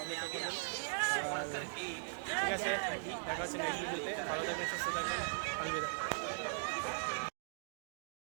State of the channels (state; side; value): silent; left; digital silence